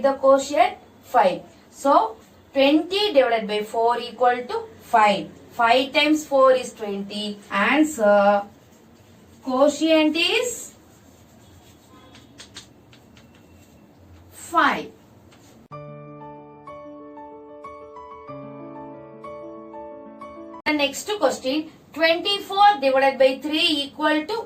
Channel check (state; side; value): identical; both; correlation 1.00